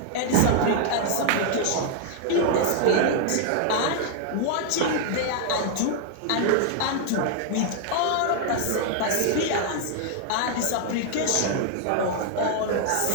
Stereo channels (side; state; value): both; different; correlation 0.00